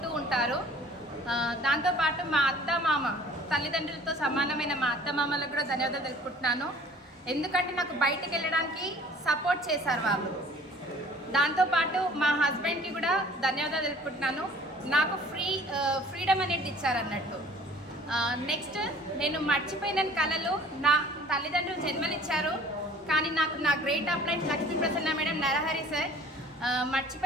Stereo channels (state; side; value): normal; both; correlation 0.50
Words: ఉంటారు. దాంతోపాటు మా అత్త మామ, తల్లిదండ్రులతో సమానమైన మా అత్త మామలకు కూడా ధన్యవాదాలు తెలుపుకుంటున్నాను. ఎందుకంటే నాకు బయటకు వెళ్ళడానికి సపోర్ట్ చేశారు వాళ్ళు. దాంతోపాటు మా హస్బెండ్కి కూడా ధన్యవాదాలు తెలుపుకుంటున్నాను. నాకు ఫ్రీడమ్ అనేది ఇచ్చారన్నట్టు. నెక్స్ట్, నేను మర్చిపోయిన కళలు నా తల్లిదండ్రులు జన్మనిచ్చారు. కానీ నాకు నా great appliances Lakshmi Prasanna madam, Narahari sir